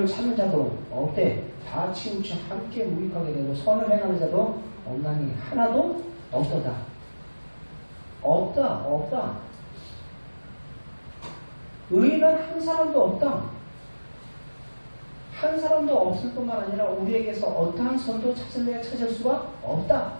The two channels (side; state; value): both; inverted; correlation -1.00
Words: 찾는 자도 없대. 다 치우쳐 함께 무익하게 되고 선을 행하는 자도 없나니 하나도 없도다. 없다. 의인은 한 사람도 없다. 한 사람도 없을 뿐만 아니라 우리에게서 어떠한 선도 찾을 수가 없다